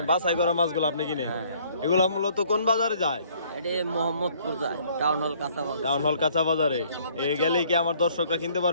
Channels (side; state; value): both; inverted; correlation -0.60